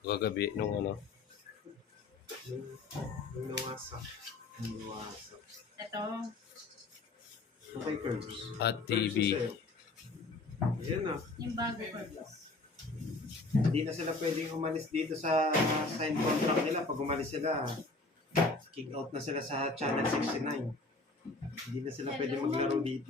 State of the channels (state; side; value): quieter; right; 3.4 dB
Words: Kagabi, nung ano. Yung nawasak. Yung nawasak. Ito. Okay, Curbs. At TV. Yan na. Yung bago ko. Hindi na sila pwedeng umalis dito sa sign contract nila. Pag umalis sila, kick out na sila sa Channel 69. Hindi na sila pwede maglaro dito.